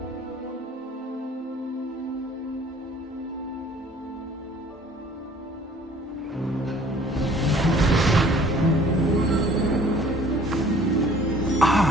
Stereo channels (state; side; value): normal; both; correlation 0.53